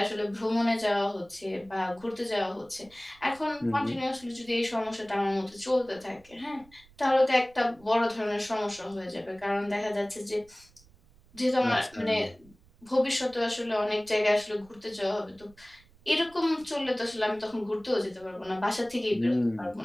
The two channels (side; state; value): right; noise; rumble, 27 dB below the sound